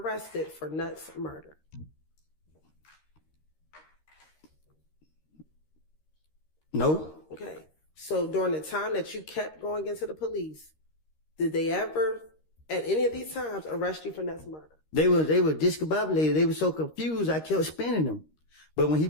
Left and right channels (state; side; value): late; right; 13 ms